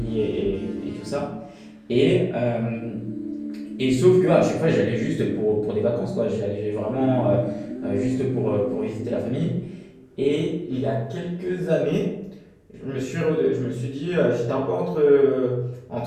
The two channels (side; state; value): both; identical; correlation 1.00